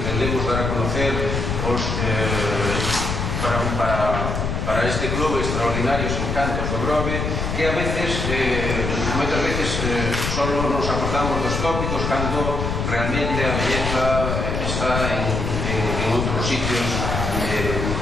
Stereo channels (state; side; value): noise; left; rumble, 2 dB below the sound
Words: dar a conocer os para este clube extraordinarios encantos do Grove, que a veces, moitas veces solo nos acordamos dos tópicos cando realmente a belleza está en outros sitios